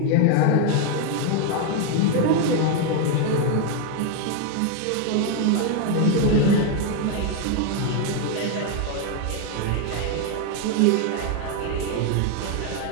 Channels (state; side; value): different; both; correlation 0.01